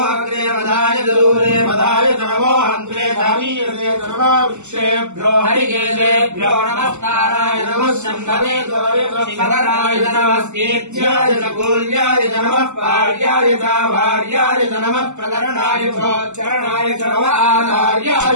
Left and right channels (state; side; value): late; left; 0.83 ms